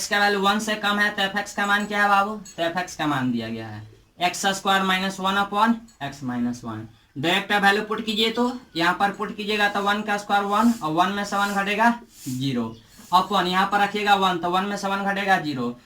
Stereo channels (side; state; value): both; identical; correlation 1.00